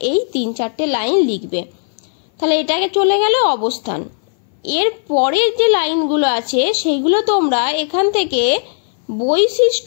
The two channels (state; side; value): silent; right; 60 dB below the other